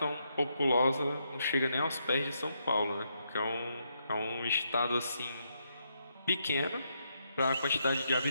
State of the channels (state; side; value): inverted; both; correlation -0.79